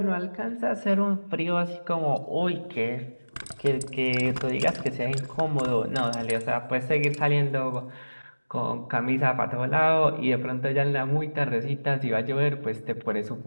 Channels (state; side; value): inverted; both; correlation -1.00